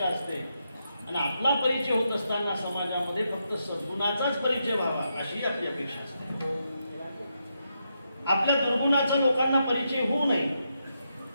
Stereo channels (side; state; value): both; inverted; correlation -0.83